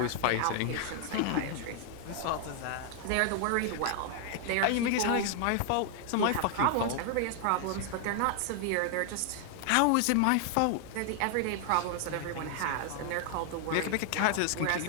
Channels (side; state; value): both; different; correlation 0.00